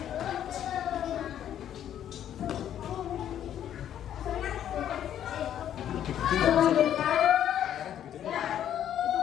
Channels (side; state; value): right; quieter; 10.4 dB